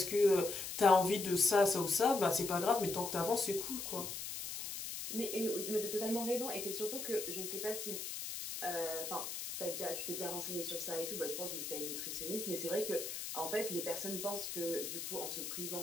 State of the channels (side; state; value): left; noise; hiss, 6 dB below the sound